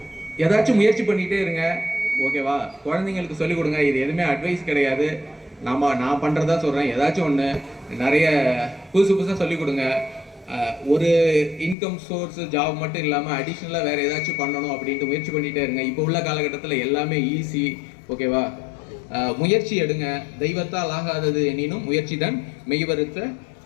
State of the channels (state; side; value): drops out; right; at 11.8 s